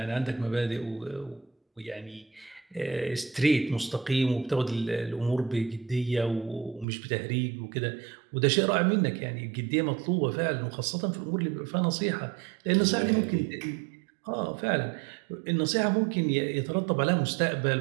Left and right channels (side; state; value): left; drops out; at 6.9 s